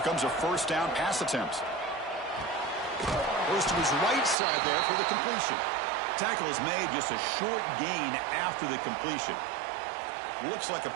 comes a first down pass attempt. Goes to his right side there for the completion. Tackle is made, just a short gain after the completion. Looks like a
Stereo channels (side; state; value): left; drops out; at 4.4 s